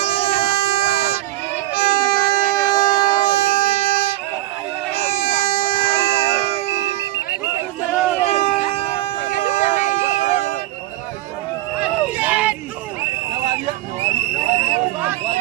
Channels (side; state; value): left; quieter; 17.0 dB